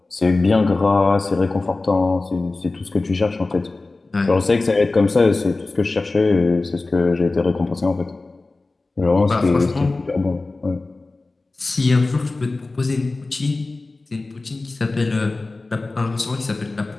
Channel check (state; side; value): quieter; right; 3.3 dB